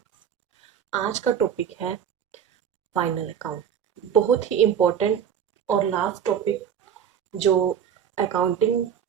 आज का टॉपिक है फाइनल अकाउंट। बहुत ही इम्पोर्टेंट और लास्ट टॉपिक जो अकाउंटिंग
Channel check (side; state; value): left; quieter; 8.4 dB